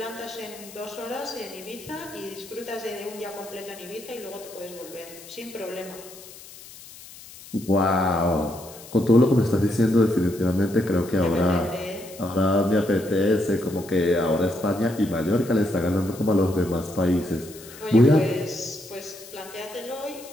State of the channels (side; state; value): left; noise; hiss, 18 dB below the sound